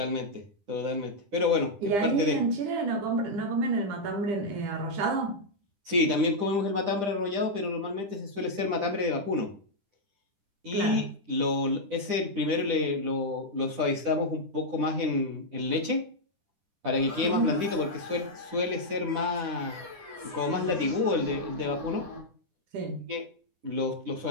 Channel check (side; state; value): left; late; 10 ms